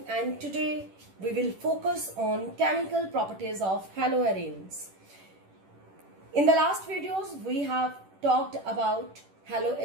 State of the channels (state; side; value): late; left; 10 ms